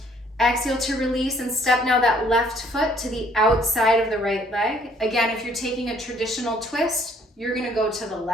Exhale to release and step now that left foot to the outside of the right leg. Again, if you're taking a traditional twist, you're gonna go to the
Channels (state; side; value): normal; both; correlation 0.62